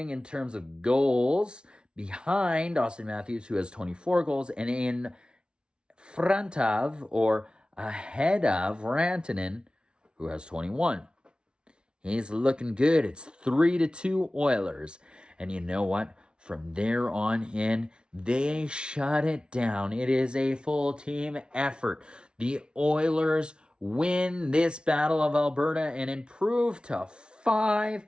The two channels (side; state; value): left; late; 0.056 ms